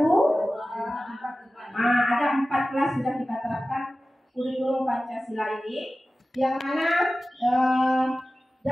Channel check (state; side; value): normal; both; correlation 0.96